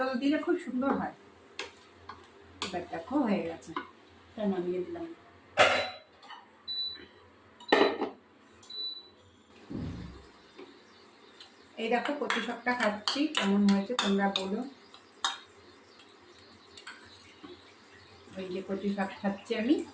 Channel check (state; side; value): identical; both; correlation 1.00